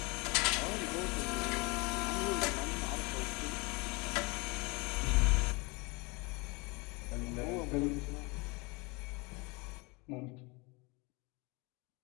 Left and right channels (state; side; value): quieter; right; 27.4 dB